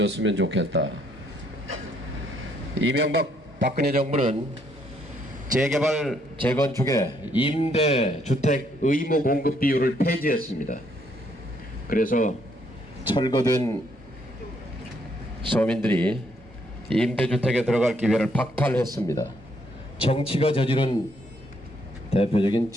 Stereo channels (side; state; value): both; normal; correlation 0.71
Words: 좋겠다. 이명박 박근혜 정부는 재개발 재건축의 임대주택 의무 공급 비율을 폐지했습니다. 그래서 철거된 서민들이 임대주택에 들어갈 기회를 박탈했습니다. 정치가 저지른 대표적인